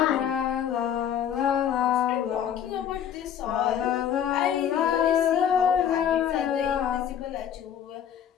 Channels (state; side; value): quieter; right; 9.3 dB